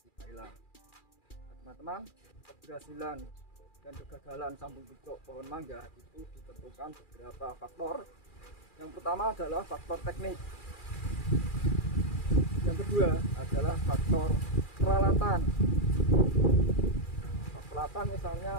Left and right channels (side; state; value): right; late; 2.4 ms